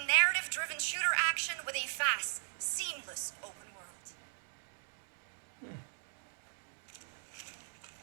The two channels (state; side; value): silent; left; 52 dB below the other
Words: narrative-driven shooter action with a fast, seamless open world.